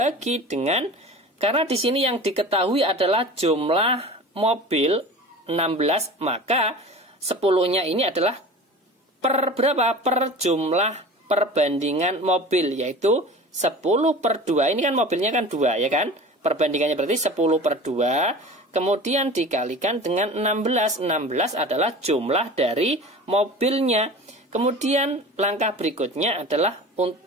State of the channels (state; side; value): normal; both; correlation 0.37